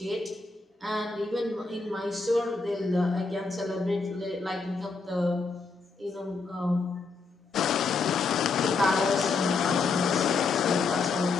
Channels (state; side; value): quieter; right; 4.2 dB